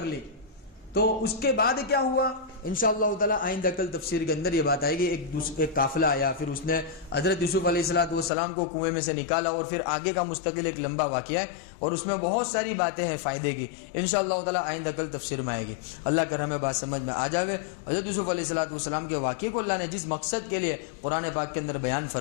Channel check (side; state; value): right; drops out; at 8.3 s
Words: لی. تو اس کے بعد کیا ہوا انشاءاللہ تعالی آئندہ کل تفسیر کے اندر یہ بات آئے گی. ایک قافلہ آیا, پھر اس نے حضرت یوسف علیہ السلام کو کنویں میں سے نکالا, اور پھر آگے کا مستقل ایک لمبا واقعہ ہے اور اس میں بہت ساری باتیں ہیں فائدے کی. انشاءاللہ تعالی آئندہ کل تفسیر میں آئے گی. اللہ کر ہمیں بات سمجھ میں آ جاوے. حضرت یوسف علیہ السلام کے واقعے کو اللہ نے جس مقصد کے لیے قرآن پاک کے اندر بیان